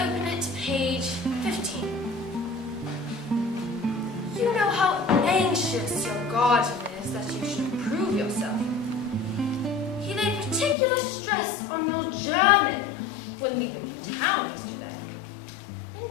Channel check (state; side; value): drops out; right; at 10.8 s